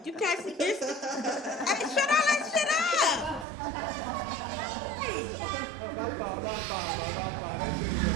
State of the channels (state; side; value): drops out; left; at 3.5 s